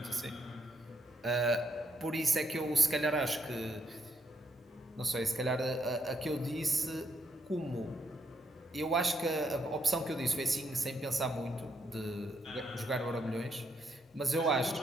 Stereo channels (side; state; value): both; normal; correlation 0.76